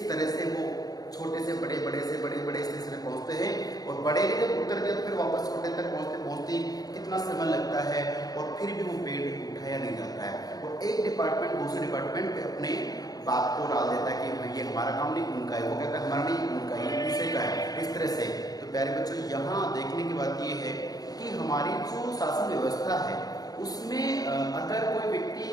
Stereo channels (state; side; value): late; right; 0.18 ms